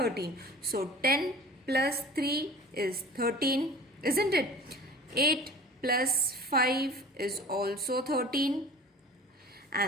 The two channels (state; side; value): normal; both; correlation 0.41